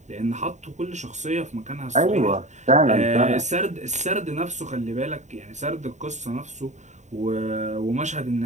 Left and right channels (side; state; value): left; late; 0.34 ms